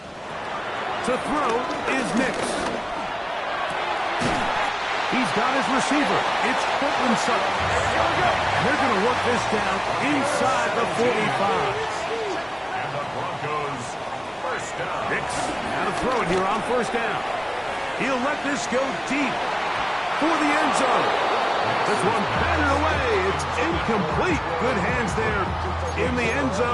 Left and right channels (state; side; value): identical; both; correlation 1.00